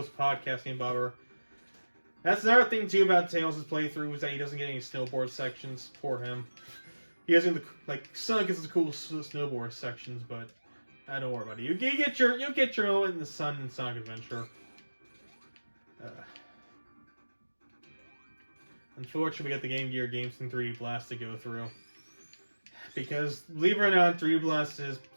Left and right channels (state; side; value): inverted; both; correlation -1.00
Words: podcasting bobber. That's another thing too about Tails' playthrough is that he doesn't get any snowboard sections. Poor him. He doesn't Sonic gets the cool snowboard sections, but don't worry about it. You'll get your own in the sun in Sonic Adventure. Unfortunately, we got the Game Gear Games in 3D Blast to go through. Because, believe it or not, 3D Blast is